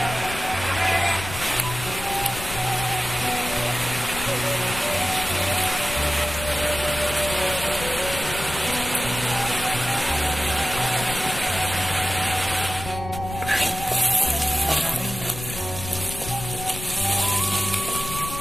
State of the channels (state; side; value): noise; left; rumble, 10 dB below the sound